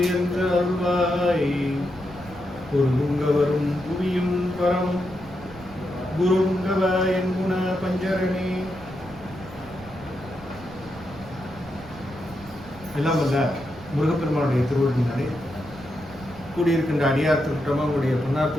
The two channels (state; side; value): noise; right; rumble, 18 dB below the sound